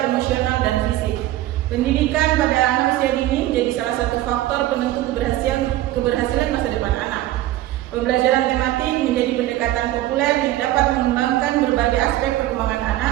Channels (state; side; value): quieter; left; 15.1 dB